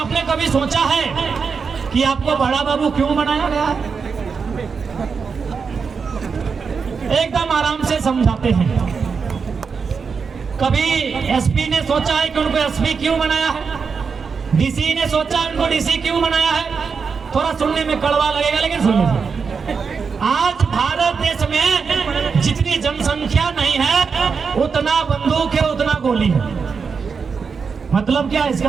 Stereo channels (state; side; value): quieter; left; 5.5 dB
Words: कभी सोचा है कि आपको बड़ा बाबू क्यों बनाया गया है? एकदम आराम से समझाते हैं। कभी एसपी ने सोचा है कि उनको एसपी क्यों बनाया है? डीसी ने सोचा है उनको डीसी क्यों बनाया है? थोड़ा सुनने में कड़वा लगेगा, लेकिन सुन लीजिए। आज भारत देश में जितनी जनसंख्या नहीं है, उतना बंदूक है, उतना गोली है। मतलब क्या है इसका?